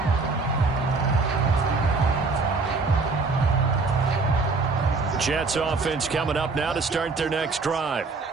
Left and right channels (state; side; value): quieter; left; 3.9 dB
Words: Jets offense coming up now to start their next drive.